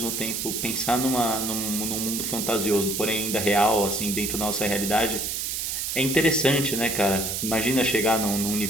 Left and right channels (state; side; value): noise; right; hiss, 2 dB below the sound